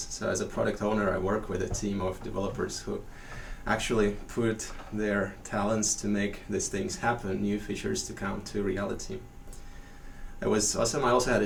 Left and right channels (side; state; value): both; identical; correlation 1.00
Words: So as a product owner, I work with a team of developers who actually put their talents to make these things happen, new features to come to reality. It was awesome. I also had a